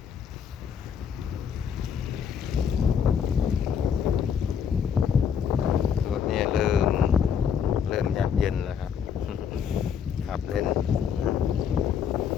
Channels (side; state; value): right; quieter; 7.5 dB